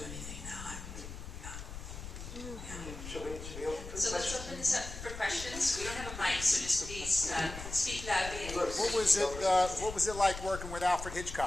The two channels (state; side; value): noise; left; rumble, 10 dB below the sound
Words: anything now. Should we open for So let's open this up for questions. We don't have a mic, so just please speak loudly. What was it like working with Alfred